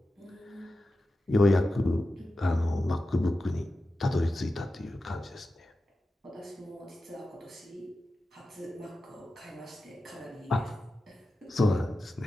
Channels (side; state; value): both; normal; correlation 0.93